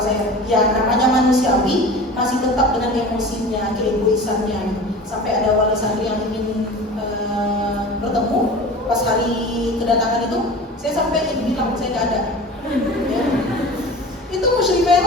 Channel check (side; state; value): both; normal; correlation 0.37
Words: saya. Ya namanya manusiawi, masih tetap dengan emosinya, keegoisannya. Gitu. Sampai ada wali santri yang ingin bertemu pas hari kedatangan itu, saya sampai bilang saya nggak ada. Ya. Itu musyrifah